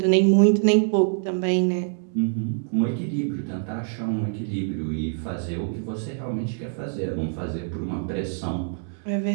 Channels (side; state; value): left; silent; digital silence